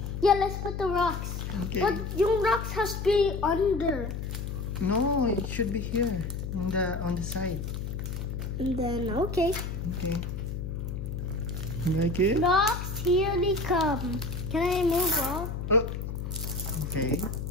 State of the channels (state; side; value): noise; left; hum, 5 dB below the sound